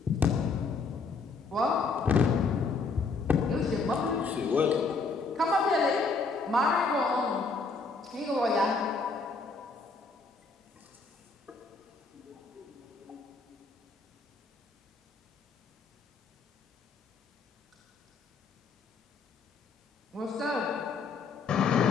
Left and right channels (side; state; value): right; quieter; 4.4 dB